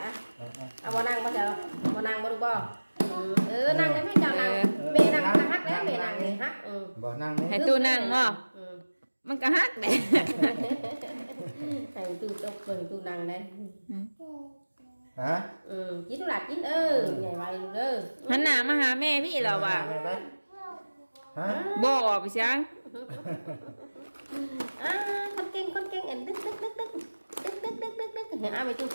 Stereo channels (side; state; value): both; inverted; correlation -1.00